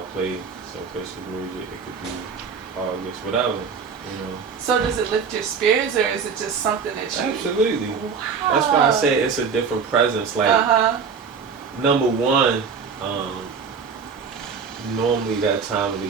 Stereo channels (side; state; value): left; quieter; 5.9 dB